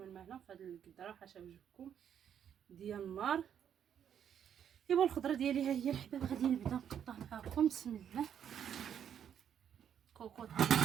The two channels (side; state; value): left; quieter; 8.9 dB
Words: الماء هنا في هذا القدره حاشا وجهكم ديال النار. ايوا الخضره ديالي ها هي الحباب. غادي نبدا نقطع معكم. بسم الله. كوكوط